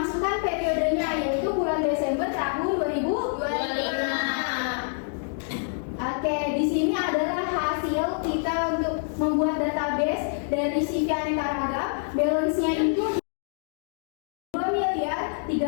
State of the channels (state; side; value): silent; right; digital silence